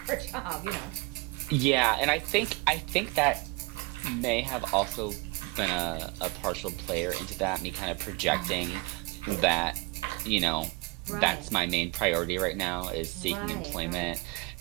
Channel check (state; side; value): quieter; left; 25.6 dB